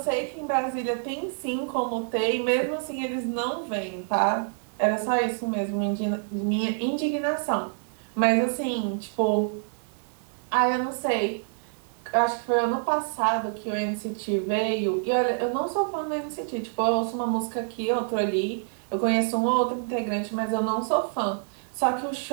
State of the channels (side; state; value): left; silent; 60 dB below the other